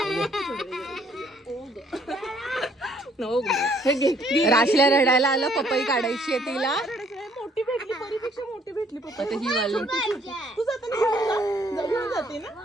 राशला रडायला आलं, पपई काढायची आहे तिला. मोठी भेटली, परीपेक्षा मोठी भेटली पप्पा. आता ही वाली तू जाताना घेऊन जाते ना.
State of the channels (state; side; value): normal; both; correlation 0.64